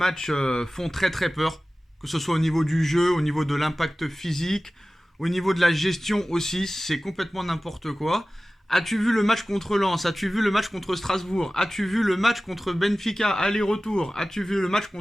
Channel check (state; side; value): normal; both; correlation 0.97